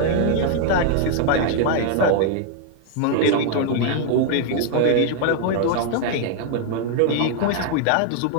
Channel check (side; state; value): both; different; correlation 0.00